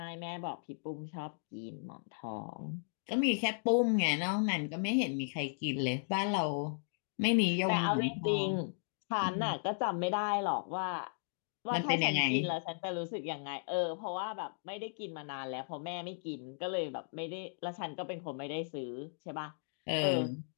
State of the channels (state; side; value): silent; right; digital silence